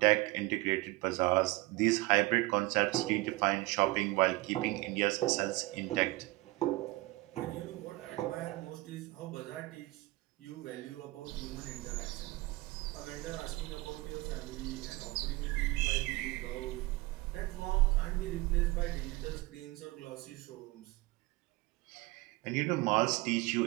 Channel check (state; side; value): quieter; left; 21.3 dB